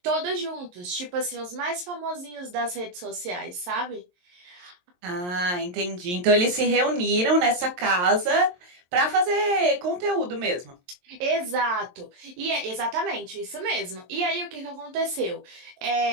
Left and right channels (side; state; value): left; late; 22 ms